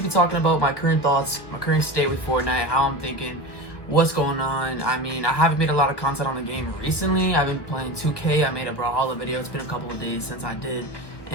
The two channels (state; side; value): late; right; 1.0 ms